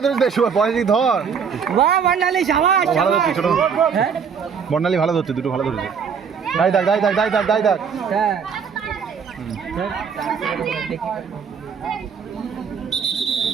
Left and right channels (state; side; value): quieter; left; 6.6 dB